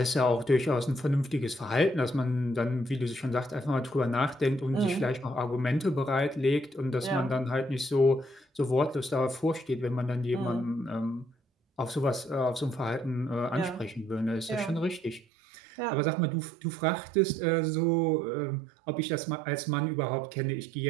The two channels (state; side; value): drops out; left; at 15.2 s